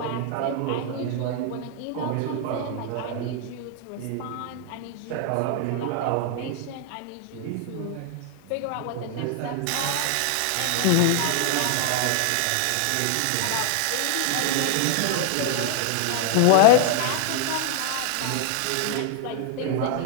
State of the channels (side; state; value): both; different; correlation 0.00